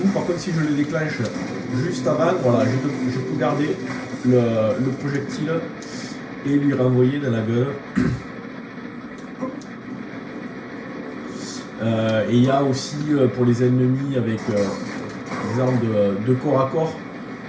Par contre, si je le déclenche juste avant, voilà, je peux garder le projectile et lui renvoyer dans la gueule. Et il y a aussi pour les ennemis avec des armes de corps à corps,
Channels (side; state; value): both; identical; correlation 1.00